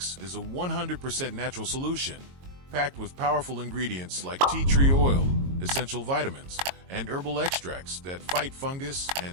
is a 100% natural solution packed with powerful ingredients like tea tree oil, essential vitamins, and herbal extracts that fight fungus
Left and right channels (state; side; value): late; left; 22 ms